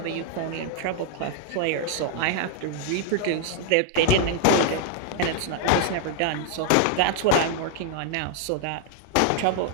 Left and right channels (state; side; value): different; both; correlation 0.00